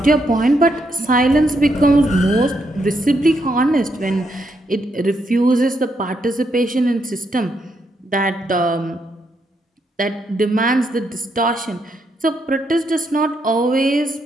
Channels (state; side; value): normal; both; correlation 0.78